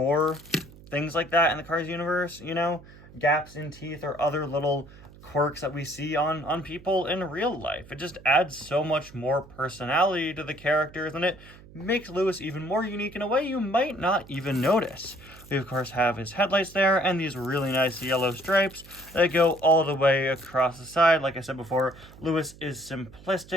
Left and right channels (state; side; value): noise; right; hum, 21 dB below the sound